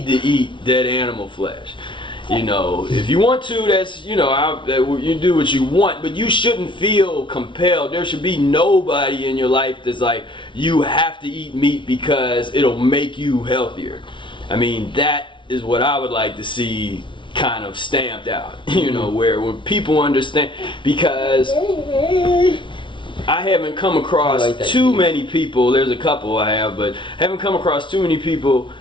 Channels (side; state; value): right; late; 0.24 ms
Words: to eat dead animal flesh. If you want to, that's you do what you want, but you shouldn't feel compelled. There should be nobody in your life that's you have to eat meat because it'll make you healthier. I mean, that is what I would like to see kind of stamped out, where when people understand, because I haven't come across too many people, there's a couple I have, but haven't come across too many people